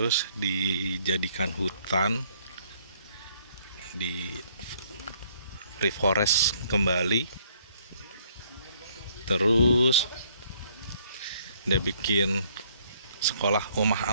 dijadikan hutan, di reforest kembali, terus dia bikin sekolah rumah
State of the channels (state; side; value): inverted; both; correlation -0.65